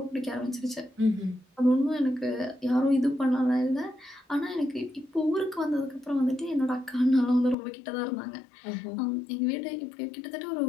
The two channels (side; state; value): right; drops out; at 7.6 s